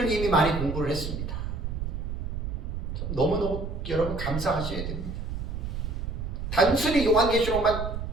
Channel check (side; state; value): right; noise; rumble, 4 dB below the sound